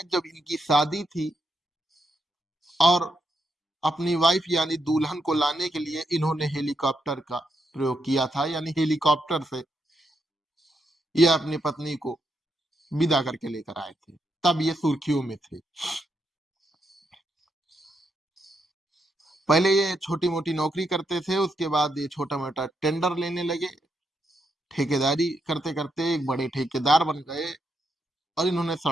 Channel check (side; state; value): both; normal; correlation 0.80